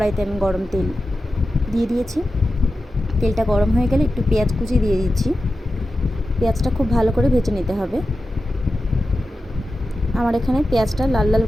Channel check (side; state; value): both; normal; correlation 0.92